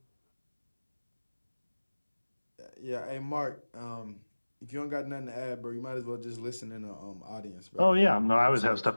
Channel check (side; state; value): both; inverted; correlation -1.00